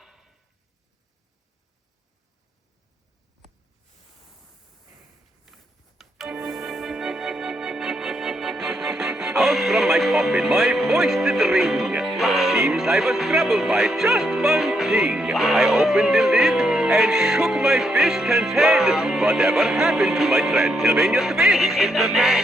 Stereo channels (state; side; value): normal; both; correlation 0.78